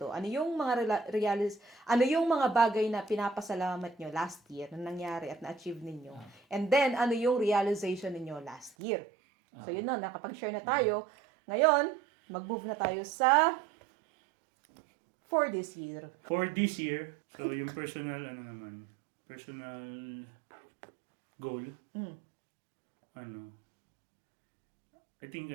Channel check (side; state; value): left; drops out; at 8.8 s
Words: Ano yung mga ano yung mga bagay na pinapasalamat nyo last year na nangyari at na-achieve ninyo? And then, ano yung realization ninyo last year? So yun na, nakapag-share na tayo. Ngayon, mag-move na tayo sa for this year. For this year, so yung personal goal, I think